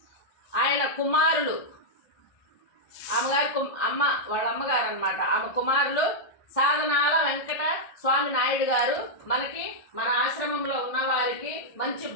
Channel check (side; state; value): right; late; 1.5 ms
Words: ఆయన కుమారులు వాళ్ళ అమ్మగారు అన్నమాట, ఆమె కుమారులు సాధనాల వెంకట స్వామి నాయుడు గారు మనకి మన ఆశ్రమంలో ఉన్న వారికి మంచి